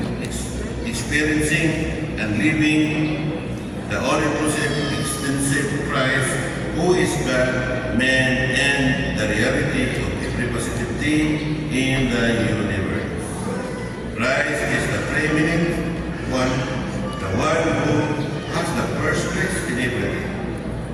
experiencing, and living the all-inclusive, extensive Christ, who is God, man, and the reality of every positive thing in the universe. Christ is the preeminent one, the one who has the first place in everything.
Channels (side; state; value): both; identical; correlation 1.00